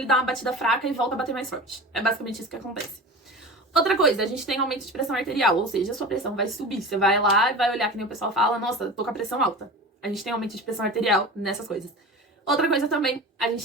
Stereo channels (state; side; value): normal; both; correlation 0.32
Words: dá uma batida fraca e volta a bater mais forte. É basicamente isso que acontece. Outra coisa, a gente tem aumento de pressão arterial, ou seja, a sua pressão vai subir. Você vai lá e vai olhar que nem o pessoal fala, nossa, tô com a pressão alta. A gente tem aumento de pressão arterial nessas coisas. Outra coisa também, a